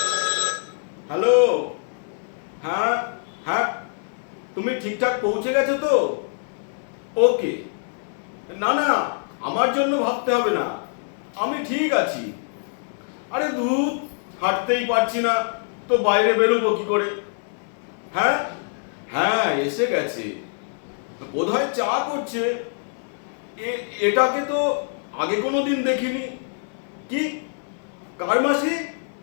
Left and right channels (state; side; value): silent; right; 62 dB below the other